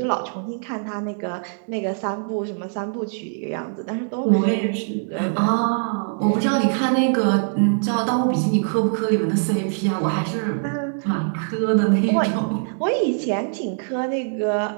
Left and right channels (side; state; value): left; silent; 60 dB below the other